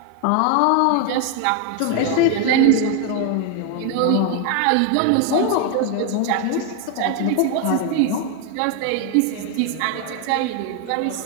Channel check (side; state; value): both; different; correlation 0.01